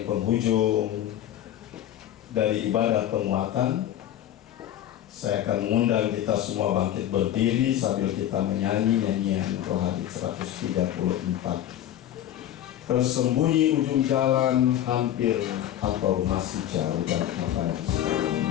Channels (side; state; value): right; quieter; 11.8 dB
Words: penghujung dari ibadah penguatan. Saya akan mengundang kita semua bangkit berdiri sambil kita menyanyi nyanyian Rohani 134. Tersembunyi ujung jalan, hampir atau masih jauh dan apa yang